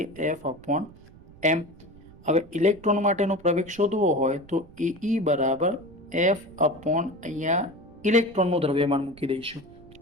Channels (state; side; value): noise; right; rumble, 22 dB below the sound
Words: F/m. હવે ઇલેક્ટ્રોન માટેનો પ્રવેગ શોધવો હોય તો AE બરાબર F/ અહીંયા ઇલેક્ટ્રોનનું દ્રવ્યમાન મૂકી દઈશું,